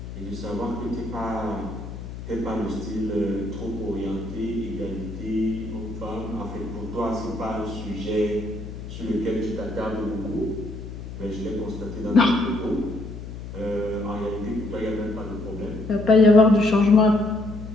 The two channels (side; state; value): left; noise; hum, 10 dB below the sound